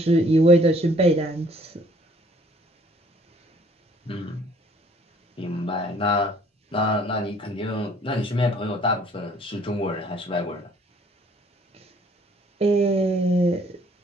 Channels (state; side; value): normal; both; correlation 0.59